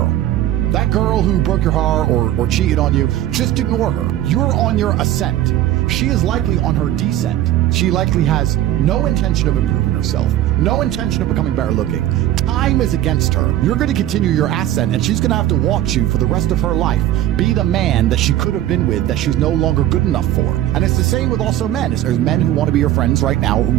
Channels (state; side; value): quieter; left; 13.1 dB